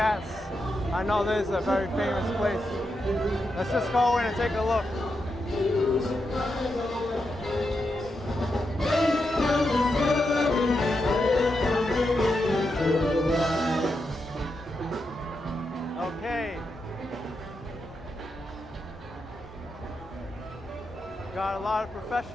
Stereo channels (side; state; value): both; normal; correlation 0.86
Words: I know this is a very famous place. Let's just go in and take a look. Okay. Got a lot of